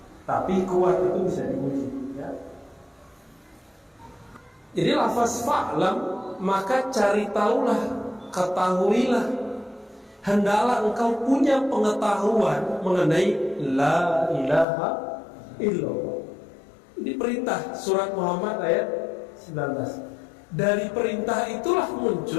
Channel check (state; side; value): drops out; right; at 14.7 s